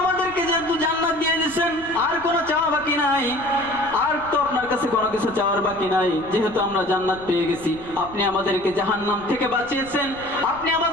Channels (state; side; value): noise; left; rumble, 21 dB below the sound